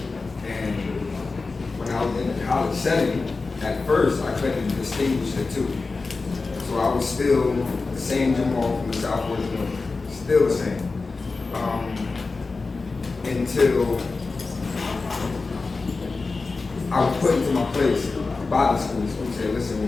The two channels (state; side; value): quieter; right; 4.0 dB